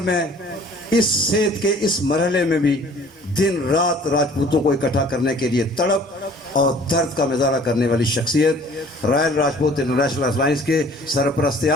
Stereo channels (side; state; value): both; normal; correlation 0.52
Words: اس صحت کے اس مرحلے میں بھی دن رات راجپوتوں کو اکٹھا کرنے کے لیے تڑپ اور درد کا مظاہرہ کرنے والی شخصیت, رائل راجپوت انٹرنیشنل الائنس کے سرپرست